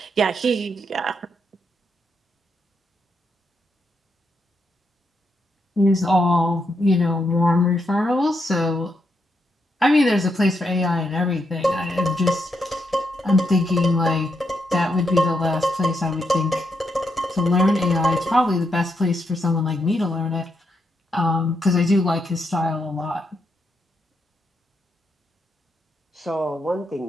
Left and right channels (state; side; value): normal; both; correlation 0.81